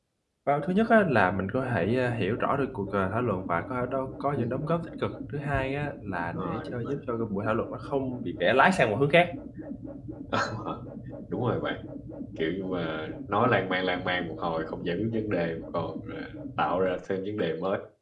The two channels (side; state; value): both; identical; correlation 1.00